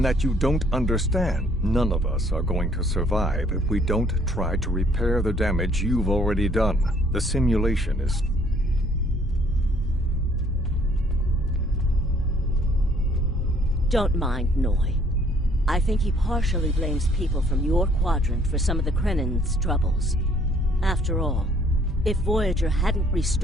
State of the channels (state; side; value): normal; both; correlation 0.62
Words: that you don't understand. None of us are going to survive if we don't try to repair the damage you've already done. The simulation is... Don't mind Noi. I think he partially blames people from your quadrant for some of the Krennin's troubles. After all, if Voyager hadn't